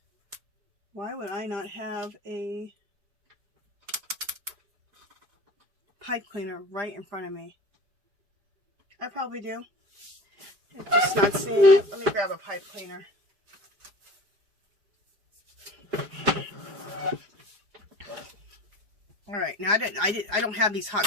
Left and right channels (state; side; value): late; left; 4.9 ms